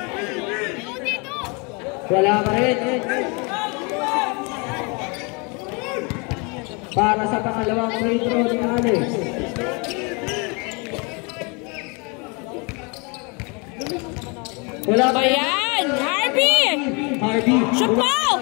Wala pa rin. Para sa pangalawang free throw ni Alex. Wala Ba yan? Harvey! Harvey. Shoot mo!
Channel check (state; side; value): quieter; right; 31.1 dB